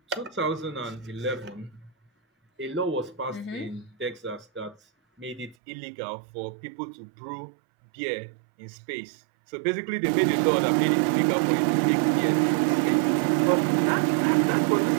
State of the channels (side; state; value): left; drops out; at 5.6 s